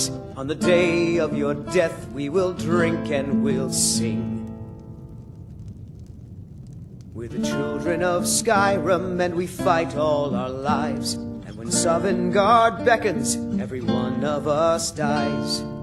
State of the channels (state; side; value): identical; both; correlation 1.00